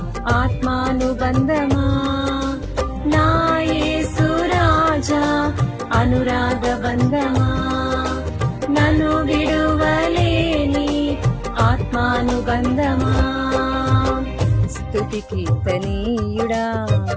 ఆత్మానుబంధమా. నా యేసు రాజా అనురాగ బంధమా, నన్ను విడువలేని ఆత్మానుబంధమా. స్తుతి కీర్తనీయుడా,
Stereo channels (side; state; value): both; identical; correlation 1.00